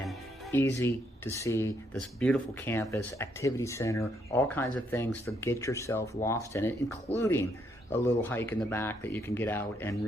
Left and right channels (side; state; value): both; normal; correlation 0.73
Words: Easy to see this beautiful campus, activity center, all kinds of things to get yourself lost in it, including a little hike in the back that you can get out and